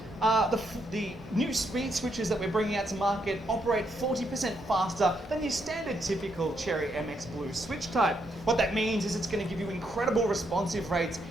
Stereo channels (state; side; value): normal; both; correlation 0.77